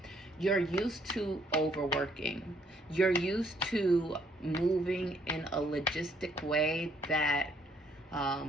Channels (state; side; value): normal; both; correlation 0.67